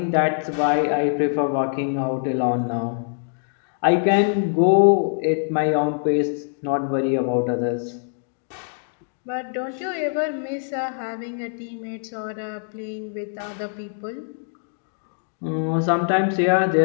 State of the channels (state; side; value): silent; right; digital silence